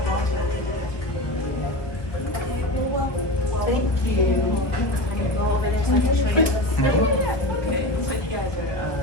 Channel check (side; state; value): right; late; 1.4 ms